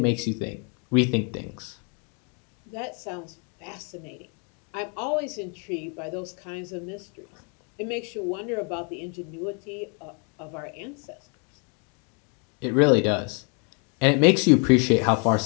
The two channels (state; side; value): quieter; right; 37.7 dB